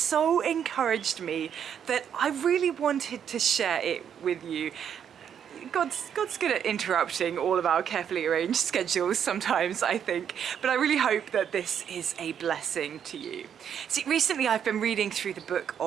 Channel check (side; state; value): left; quieter; 8.5 dB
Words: encouraged me that I really wanted to share it with you. God's good at interrupting all of our carefully arranged schedules sometimes, I think, but I really hope that this is a blessing to you. See, recently I've been reading through the book